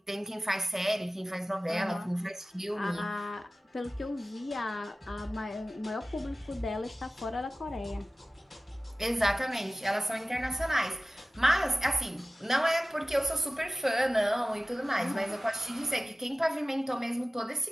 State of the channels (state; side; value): normal; both; correlation 0.96